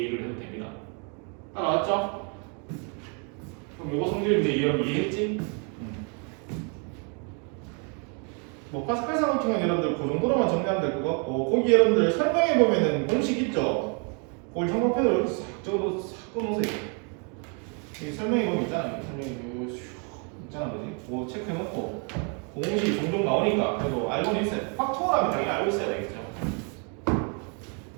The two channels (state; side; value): quieter; left; 37.4 dB